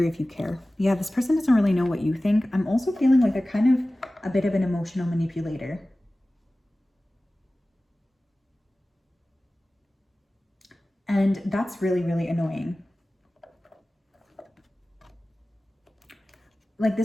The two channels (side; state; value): both; normal; correlation 0.97